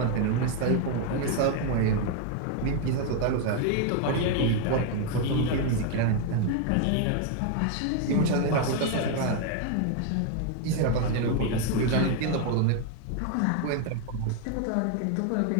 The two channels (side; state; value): both; different; correlation 0.01